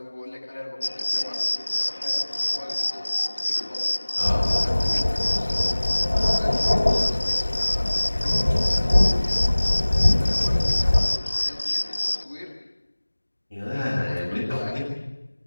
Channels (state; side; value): inverted; both; correlation -1.00